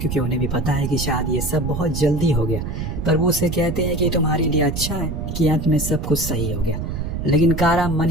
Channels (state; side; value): noise; right; rumble, 5 dB below the sound